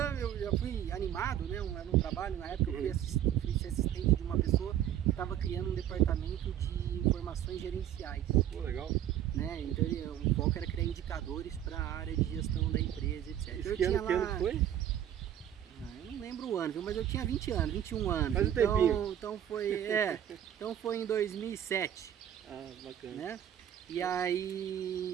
eu já fui animado, né? Era um trabalho, na época eu fui assistente de uma pessoa que estava criando um departamento de informações gerenciais. Pô, legal. Né? Então o foco era criar indicadores para a área de gestão da empresa, etc. Esse que ano foi? Eu não lembro o ano, viu? Mas eu tinha 20 anos, 21 anos. Faz um tempinho. Então foi em 2007. Ah, bacana. Né? E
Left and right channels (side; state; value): left; quieter; 10.8 dB